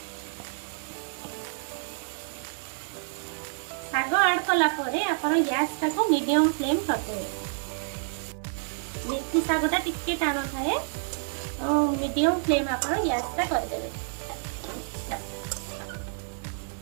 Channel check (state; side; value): silent; left; 59 dB below the other